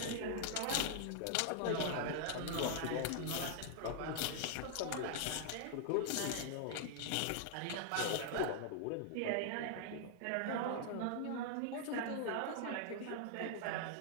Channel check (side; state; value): both; different; correlation 0.00